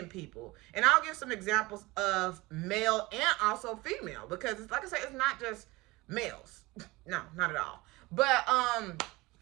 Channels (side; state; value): left; quieter; 21.7 dB